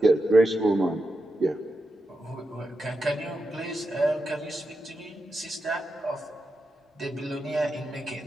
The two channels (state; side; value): normal; both; correlation 0.87